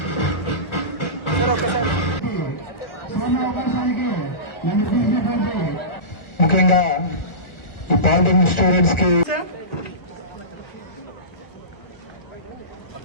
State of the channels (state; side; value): late; right; 1.4 ms